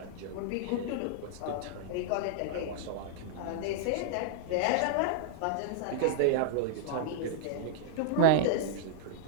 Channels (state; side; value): different; both; correlation -0.01